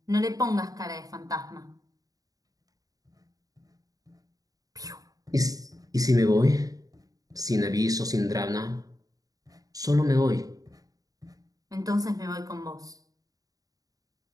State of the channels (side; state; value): left; late; 0.18 ms